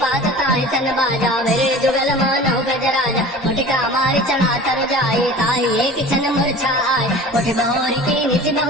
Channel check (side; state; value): both; normal; correlation 0.40